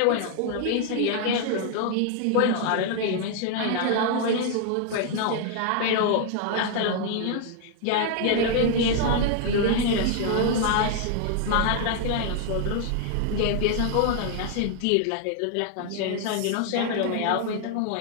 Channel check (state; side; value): different; both; correlation 0.00